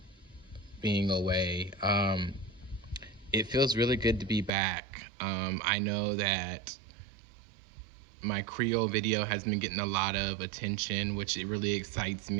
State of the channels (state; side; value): drops out; left; at 4.5 s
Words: being away. It feels really good to be back. I know that my Creole video has been getting a lot of attention, which it really excites